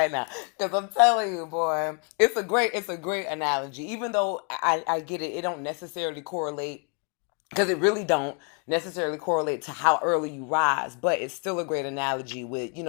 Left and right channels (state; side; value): quieter; right; 38.1 dB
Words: now. Because I'm telling you, boy, it's a great analogy. Even though I get it, it don't necessarily correlate, because it really don't necessarily correlate to how early you rise, but it's still a great analogy with, you